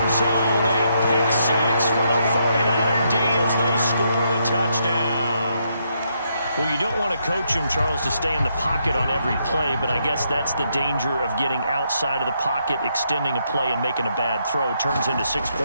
zone. A pick six for the 49er D as they score the touchdown. Well, you don't want to coach him, Charles, to stay in the pocket on every play, but I guess that's the danger of getting outside of the pocket, extending a play, and making a bad throw. Turns into 6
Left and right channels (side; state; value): both; inverted; correlation -0.76